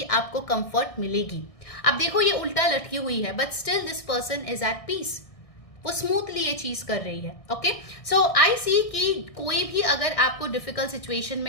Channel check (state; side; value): late; right; 1.6 ms